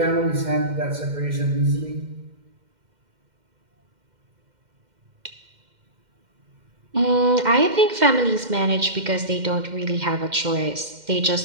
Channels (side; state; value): left; late; 2.1 ms